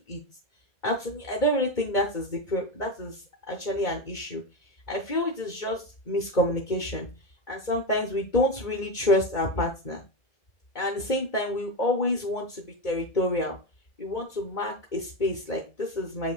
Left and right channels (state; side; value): late; right; 1.8 ms